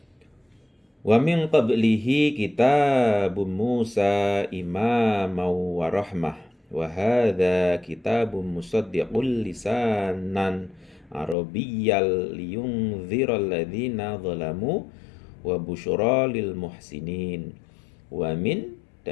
Wa min qablihi kitabun Musa imaman wa rahmah wa hadza kitabun musaddiqul lisanan arabiyyal liyunziral ladzina zalamu wa busyra lil muhsinin. Wa min,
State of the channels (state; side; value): drops out; right; at 11.4 s